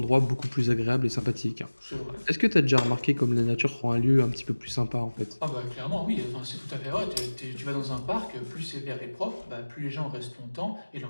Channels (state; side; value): inverted; both; correlation -1.00